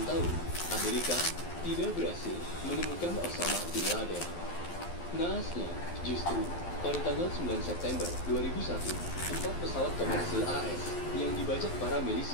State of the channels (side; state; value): right; late; 12 ms